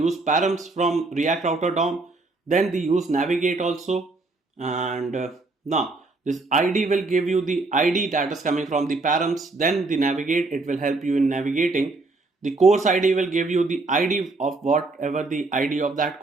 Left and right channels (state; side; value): quieter; left; 3.4 dB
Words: params from React Router DOM, then the use navigate also, and now this ID will give you the ID that is coming from the params, then the navigate, it will help you in navigating. The course ID will give you the ID of whatever the ID of that